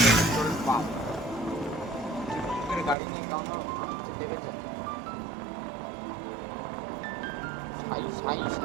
গাড়ি নিয়ে কেমন আসছে দেখেছেন, সাই সাই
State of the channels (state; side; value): drops out; left; at 3.0 s